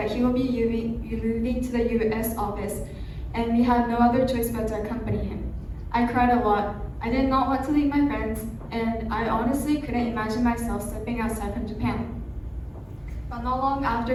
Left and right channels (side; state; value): both; identical; correlation 1.00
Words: he will be moving to the US office, and we had no other choice but to accompany him. I cried a lot. I did not want to leave my friends, and I honestly couldn't imagine myself stepping outside from Japan. But not long